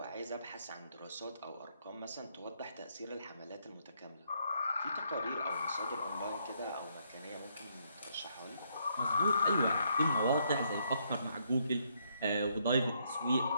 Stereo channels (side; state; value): both; inverted; correlation -0.73